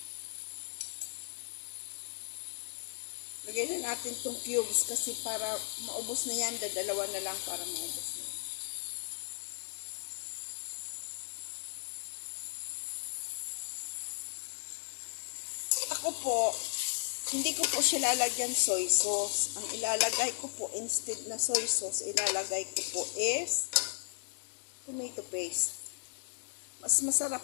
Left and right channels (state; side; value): silent; right; digital silence